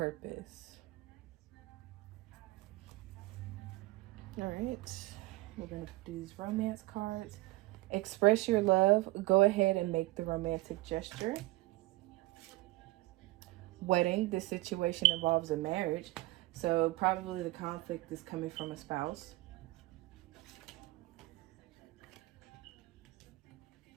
All right, we're going to do these romance cards. Express your love. Go ahead and make the romantic gesture. Wedding. This situation involves a marriage. So probably the conflict is coming from a spouse.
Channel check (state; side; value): quieter; left; 20.4 dB